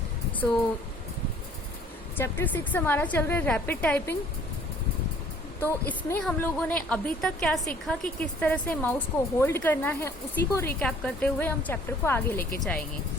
सो चैप्टर 6 हमारा चल रहा है रैपिड टाइपिंग। तो इसमें हम लोगों ने अभी तक क्या सीखा कि किस तरह से माउस को होल्ड करना है, उसी को रिकैप करते हुए हम चैप्टर को आगे लेके जाएंगे।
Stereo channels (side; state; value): both; normal; correlation 0.56